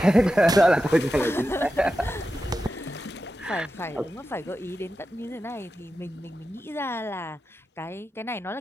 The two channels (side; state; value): both; normal; correlation 0.91